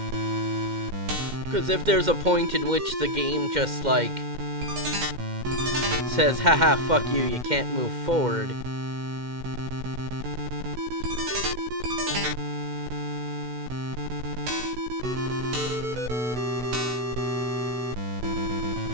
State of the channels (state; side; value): late; left; 2.1 ms